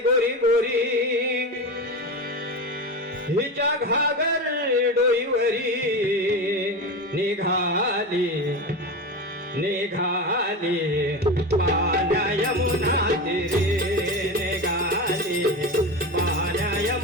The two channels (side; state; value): both; normal; correlation 0.23